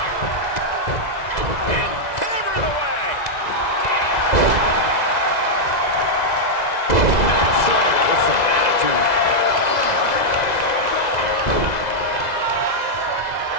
And hammering away. Slam with some attitude.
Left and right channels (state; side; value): late; right; 2.0 ms